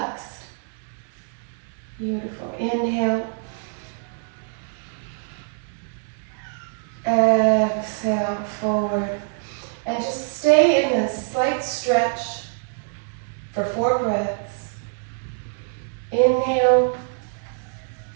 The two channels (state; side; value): silent; left; 62 dB below the other